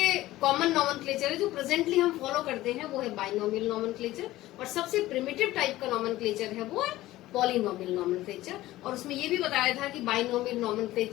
कॉमन नॉमेनक्लेचर है जो प्रेजेंटली हम फॉलो करते हैं वो है बाइनोमियल नॉमेनक्लेचर, और सबसे प्रिमिटिव टाइप का नॉमेनक्लेचर है वो है पॉलिनोमियल नॉमेनक्लेचर। और उसमें ये भी बताया था कि binomial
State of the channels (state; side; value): quieter; right; 16.3 dB